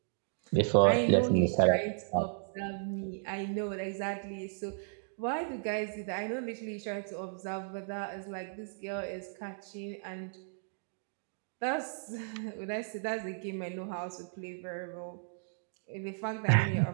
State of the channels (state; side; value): silent; left; digital silence